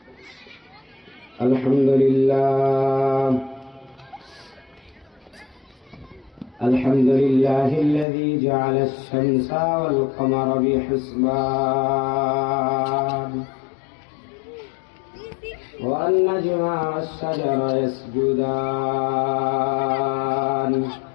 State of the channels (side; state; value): right; drops out; at 8.1 s